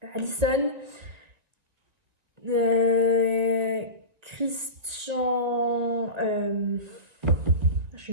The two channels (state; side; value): late; left; 2.0 ms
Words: Allison, Christian, je